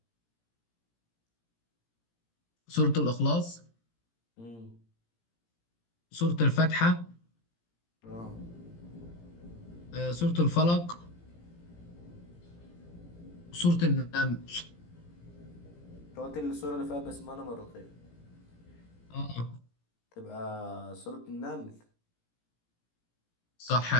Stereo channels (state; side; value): late; right; 17 ms